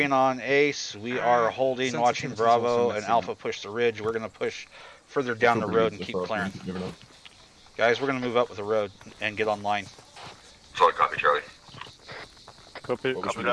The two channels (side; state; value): both; identical; correlation 1.00